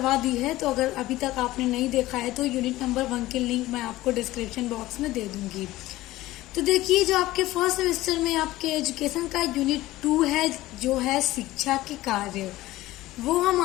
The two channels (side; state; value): right; quieter; 17.0 dB